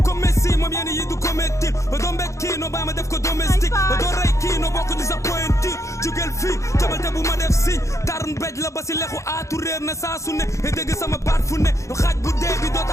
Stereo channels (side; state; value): right; late; 0.15 ms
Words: Messi moom yenn yi du ko métti ba doo mbéj kii noo bàyyi ma def ko domestique ba doo rey kii noo bokk di sa pointure jugel fii tabalte bu ma def signe tarn béj la ba si lexu aatu réer na saa su ne e dégg sama baat fu ne bu dee bi doo